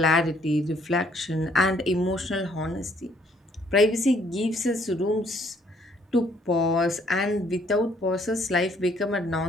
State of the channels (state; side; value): normal; both; correlation 0.65